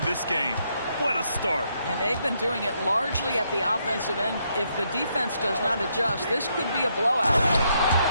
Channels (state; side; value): inverted; both; correlation -0.76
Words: this game. What a start. And they've been doing it largely at the offensive end. If the defense does not adjust, this could be a blowout.